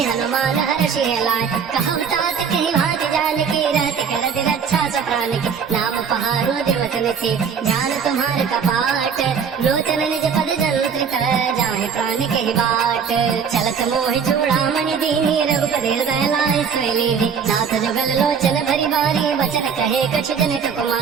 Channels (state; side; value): quieter; left; 6.6 dB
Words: हनुमान हर्षि लाय। कहु तात कहि भाति जानकी रहति कर दिल अच्छा सो प्राण की। नाम पहारो दिवस निसी जान तुम्हार कपाट। लोचन निज पद जंत्रित जाहि प्राण के बाट। चलत मोहि चूड़ामणि दीनी रघुपति हृदय लाय स्वैलीनी। नाथ जुगल लोचन भरी बारी बचन कहे कछु जनित